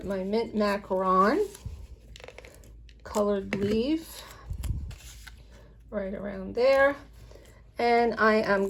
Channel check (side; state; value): both; identical; correlation 1.00